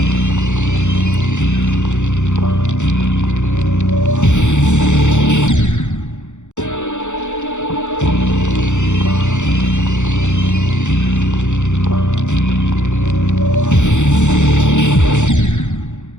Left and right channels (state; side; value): late; right; 0.84 ms